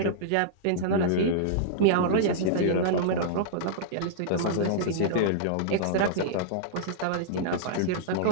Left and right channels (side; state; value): both; different; correlation -0.02